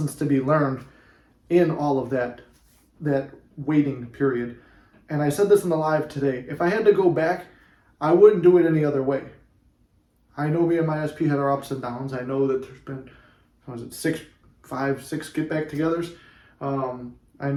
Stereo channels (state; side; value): identical; both; correlation 1.00